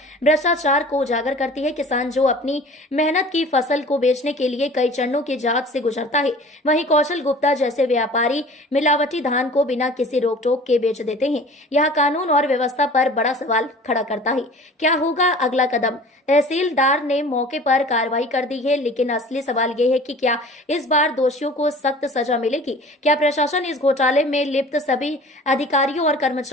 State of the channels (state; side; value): normal; both; correlation 0.44